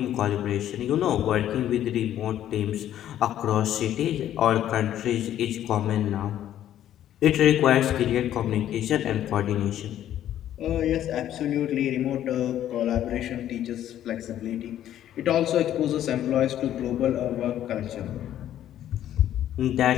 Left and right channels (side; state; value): right; quieter; 11.6 dB